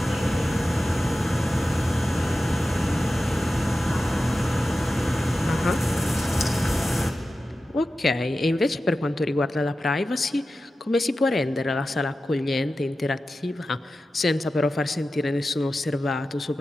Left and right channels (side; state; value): both; normal; correlation 0.93